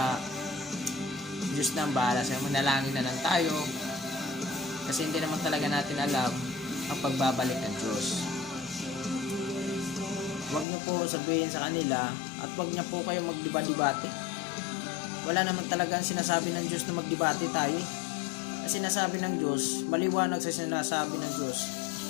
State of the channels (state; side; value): drops out; right; at 10.7 s